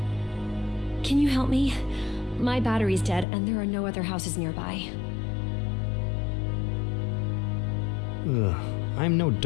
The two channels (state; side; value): drops out; right; at 3.2 s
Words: Can you help me? My battery's dead, and there are no other houses nearby. Ugh, I'm no